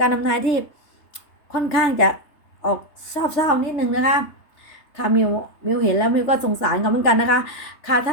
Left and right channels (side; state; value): right; late; 3.3 ms